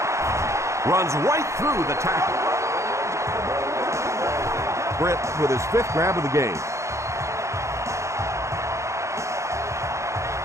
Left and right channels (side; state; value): left; late; 0.14 ms